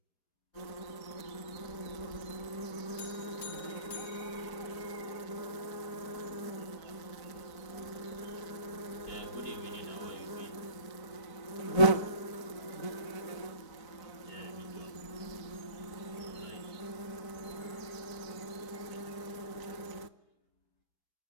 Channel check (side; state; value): right; late; 4.0 ms